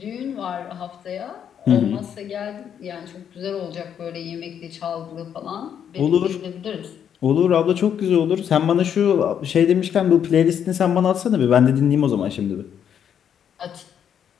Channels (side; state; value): right; quieter; 8.6 dB